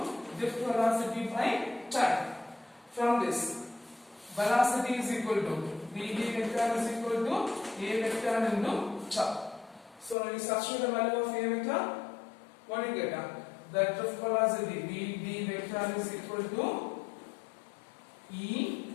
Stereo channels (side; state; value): right; drops out; at 10.2 s